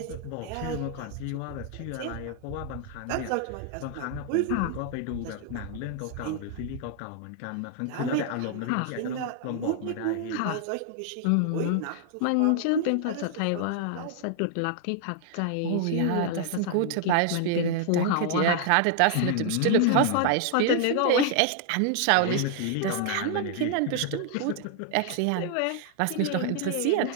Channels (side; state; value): both; different; correlation 0.00